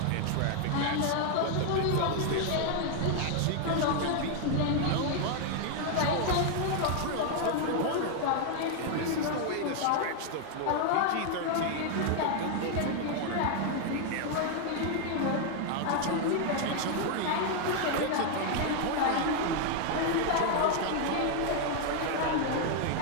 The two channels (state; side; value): different; both; correlation 0.00